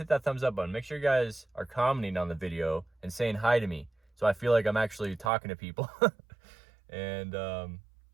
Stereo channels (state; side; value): drops out; left; at 5.3 s